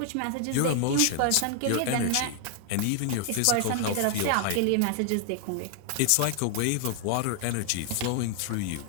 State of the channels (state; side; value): different; both; correlation 0.00